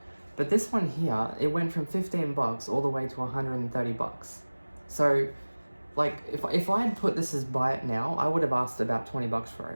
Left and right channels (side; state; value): both; inverted; correlation -1.00